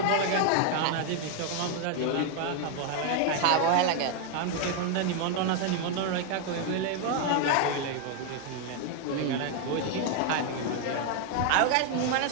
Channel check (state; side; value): different; both; correlation 0.01